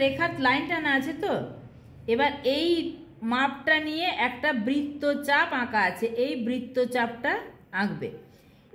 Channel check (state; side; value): identical; both; correlation 1.00